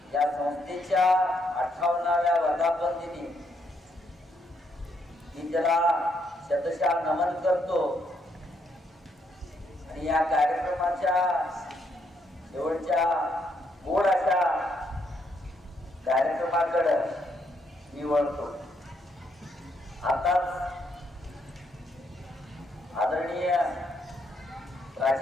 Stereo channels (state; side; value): normal; both; correlation 0.75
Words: या संस्थेच्या 58व्या वर्धापन दिनी मी त्याला शतशः नमन करतो. आणि या कार्यक्रमाच्या शेवटच्या गोड अशा कार्यक्रमाकडे मी वळतो. आताच आदरणीय